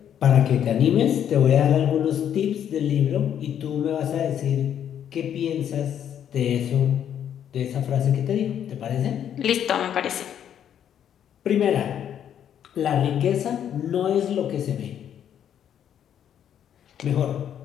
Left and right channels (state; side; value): quieter; right; 9.5 dB